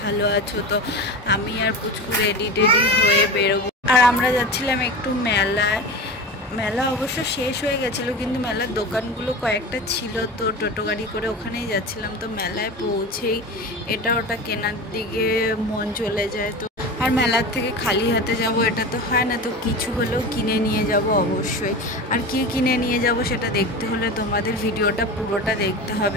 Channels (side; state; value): both; normal; correlation 0.29